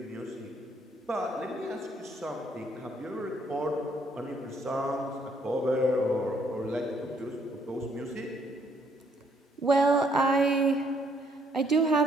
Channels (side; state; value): both; normal; correlation 0.68